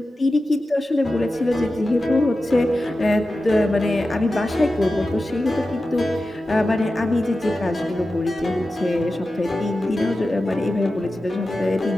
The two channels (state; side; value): normal; both; correlation 0.93